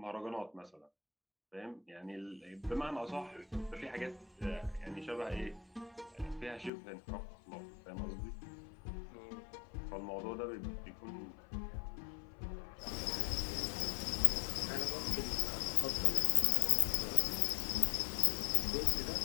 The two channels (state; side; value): drops out; right; at 6.7 s